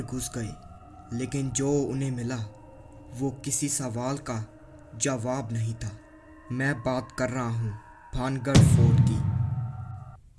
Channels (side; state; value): both; identical; correlation 1.00